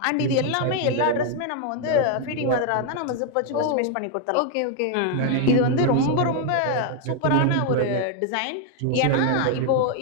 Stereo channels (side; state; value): both; different; correlation 0.00